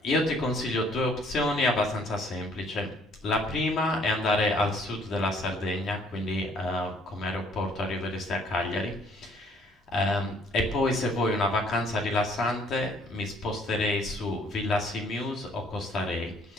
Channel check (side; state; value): both; normal; correlation 0.61